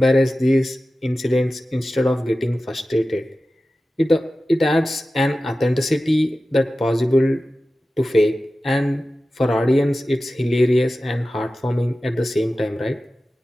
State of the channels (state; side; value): normal; both; correlation 0.95